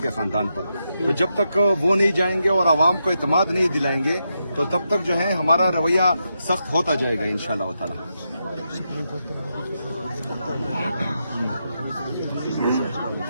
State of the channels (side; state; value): both; inverted; correlation -0.85